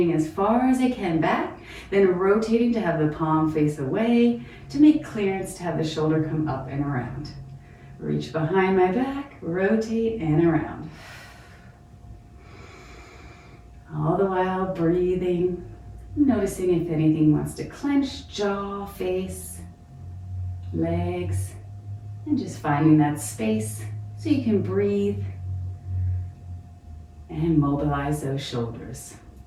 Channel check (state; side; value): identical; both; correlation 1.00